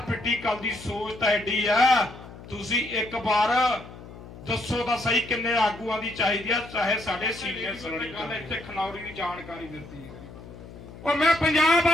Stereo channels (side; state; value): left; noise; hum, 16 dB below the sound